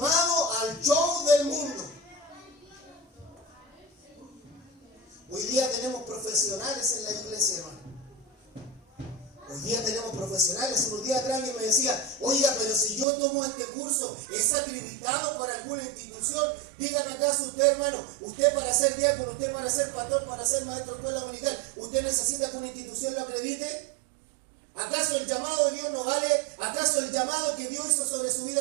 al show del mundo. Hoy día tenemos profesionales en la iglesia, hermano. Hoy día tenemos profesionales. Unos días atrás alguien me decía, oiga, pero si yo tomo este curso, ¿es acreditado para alguna institución? Dígame acaso usted, hermano, usted para ser diácono, usted para ser pastor, para ser maestro de escuela dominical, ¿usted necesita que una institución lo acredite? ¿Acaso el llamado de Dios no vale? ¿Acaso el llamado que Dios hizo sobre su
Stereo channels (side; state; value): left; drops out; at 13.1 s